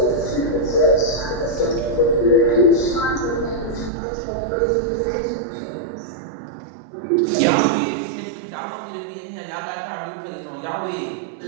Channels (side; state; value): left; drops out; at 3.9 s